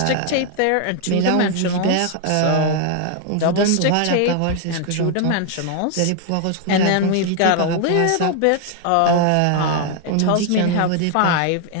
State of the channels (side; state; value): both; different; correlation 0.00